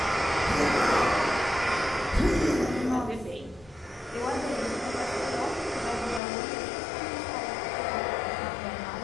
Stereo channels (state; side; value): drops out; right; at 6.2 s